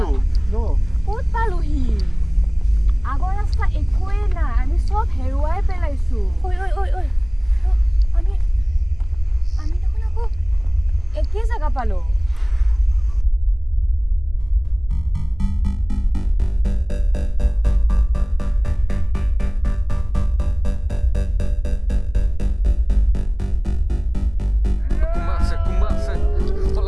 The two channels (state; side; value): noise; right; hum, 22 dB below the sound